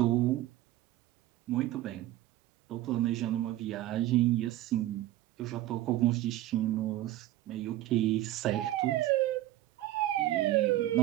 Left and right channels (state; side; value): quieter; left; 14.9 dB